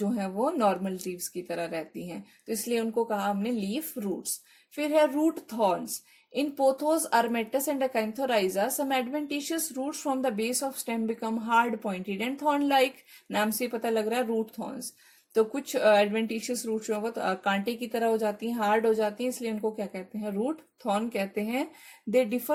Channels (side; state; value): both; identical; correlation 1.00